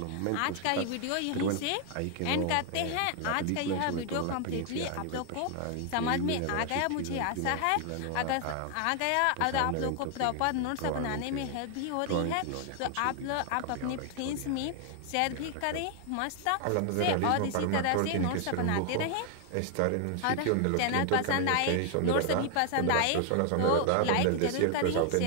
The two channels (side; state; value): both; different; correlation 0.00